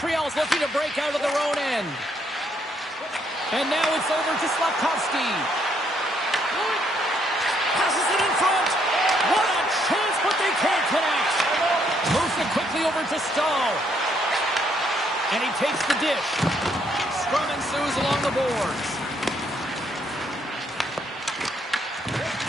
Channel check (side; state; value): both; normal; correlation 0.71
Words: looking to break out of their own end. And now it's over to Slafkovsky. Passes it in front. What a chance, but they can't connect. Moves it quickly over to Stahl. And he takes the dish. Scrum ensues along the boards.